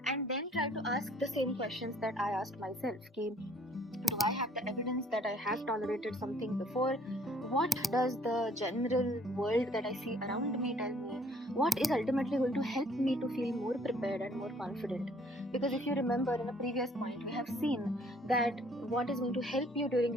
and then try to ask the same questions that I asked myself. Do I have the evidence that I have tolerated something before? What does the general world that I see around me tell me? What is ultimately going to help me to feel more prepared and more confident? Because if you remember in a previous point, we have seen that what is going to help you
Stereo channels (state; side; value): normal; both; correlation 0.60